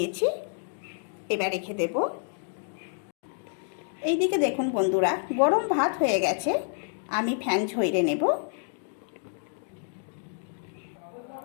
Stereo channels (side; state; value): right; silent; 59 dB below the other